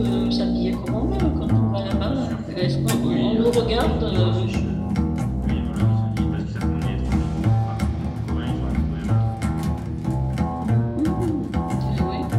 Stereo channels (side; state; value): both; identical; correlation 1.00